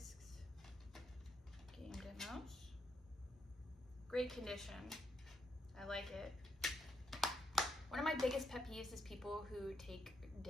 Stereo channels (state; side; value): normal; both; correlation 0.78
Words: Game demos. Great condition. I like it. One of my biggest pet peeves is people who take